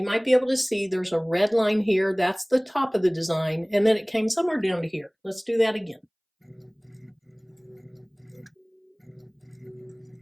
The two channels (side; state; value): both; identical; correlation 1.00